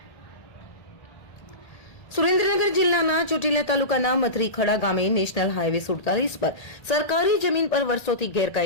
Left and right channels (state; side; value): late; right; 1.8 ms